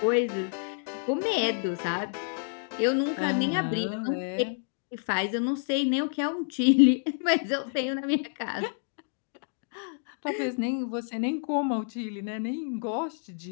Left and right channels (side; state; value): right; silent; digital silence